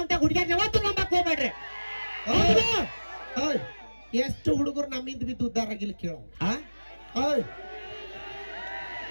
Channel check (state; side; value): inverted; both; correlation -1.00